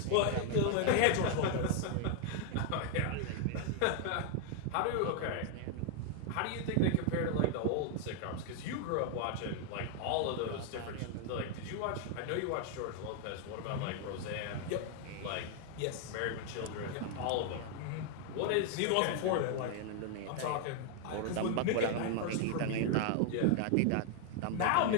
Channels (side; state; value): both; different; correlation 0.00